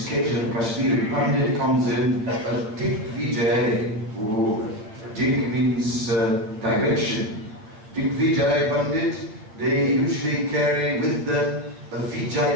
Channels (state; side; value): late; left; 8.9 ms